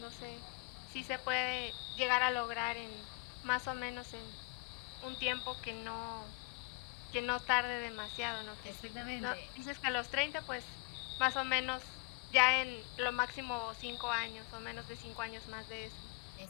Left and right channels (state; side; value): quieter; right; 28.1 dB